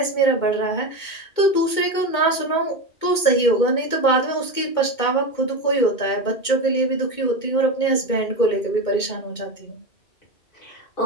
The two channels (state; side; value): late; right; 2.2 ms